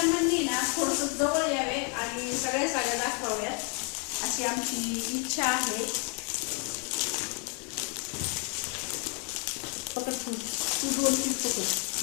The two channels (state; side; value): quieter; right; 37.7 dB